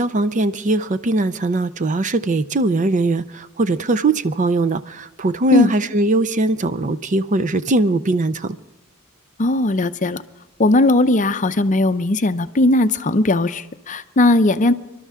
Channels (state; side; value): normal; both; correlation 0.52